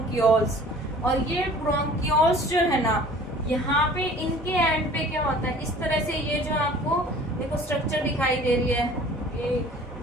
और ये ब्रोंक्यूल्स जो है ना, यहाँ पे इनके एंड पे क्या होता है, इस तरह से ये जो आपको देखो स्ट्रक्चर दिखाई दे रही है, ये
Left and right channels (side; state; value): both; normal; correlation 0.48